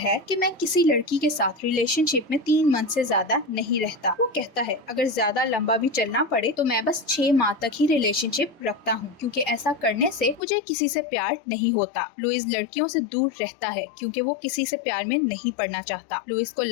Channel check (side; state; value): right; drops out; at 10.4 s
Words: कि मैं किसी लड़की के साथ रिलेशनशिप में 3 मंथ से ज्यादा नहीं रहता। वो कहता है, अगर ज्यादा लंबा भी चलना पड़े तो मैं बस 6 माह तक ही रिलेशनशिप रखता हूँ, क्योंकि ऐसा करने से मुझे किसी से प्यार नहीं होता। लुइस लड़कियों से दूर रहता है क्योंकि वो किसी से प्यार में नहीं पड़ना चाहता। लुइस को